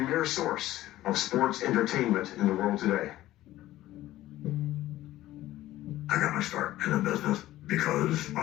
source of sports entertainment in the world today. I got my start in the business because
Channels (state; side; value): quieter; right; 15.1 dB